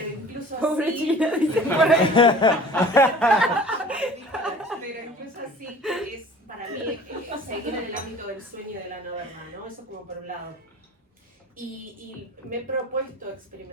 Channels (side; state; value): both; normal; correlation 0.45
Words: incluso pobre así... China, dice por ahí. Pero incluso así es para mí seguir en el ámbito del sueño y de la no verdad, ¿no? Eso como por un lado. Y me he propuesto